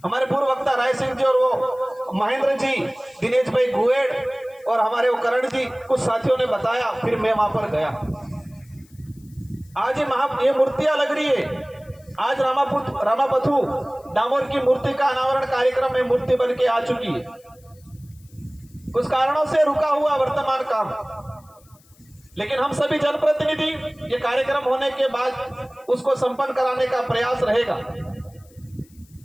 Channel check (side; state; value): left; noise; hiss, 30 dB below the sound